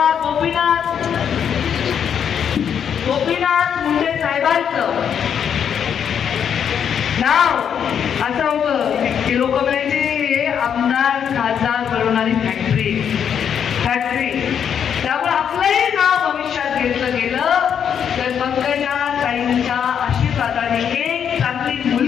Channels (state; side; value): quieter; right; 8.1 dB